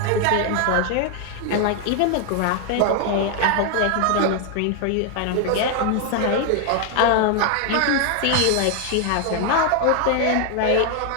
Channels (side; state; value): both; different; correlation 0.00